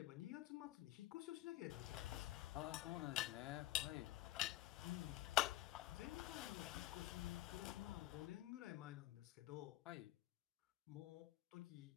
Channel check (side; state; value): right; quieter; 15.4 dB